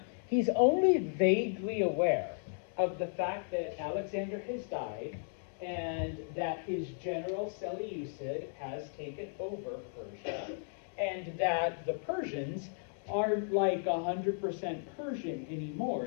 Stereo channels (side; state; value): right; silent; digital silence